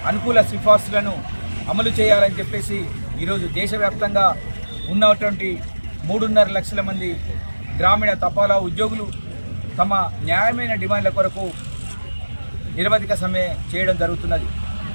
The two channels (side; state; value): both; inverted; correlation -1.00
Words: అనుకూల సిఫార్సులను అమలు చేయాలని చెప్పేసి ఈరోజు దేశవ్యాప్తంగా ఉన్నటువంటి 3.5 లక్షల మంది గ్రామీణ తపాలా ఉద్యోగులు తమ న్యాయమైన డిమాండ్ల కొరకు నిరవధిక సమ్మె చేయడం జరుగుతున్నది.